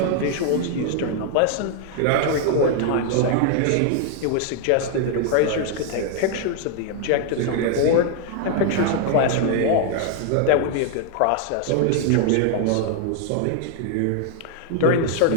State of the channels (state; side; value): different; both; correlation 0.00